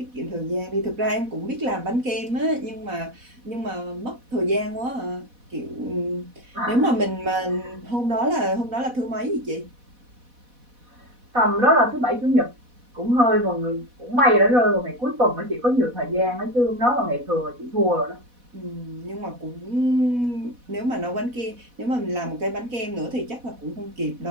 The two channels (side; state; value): left; late; 4.1 ms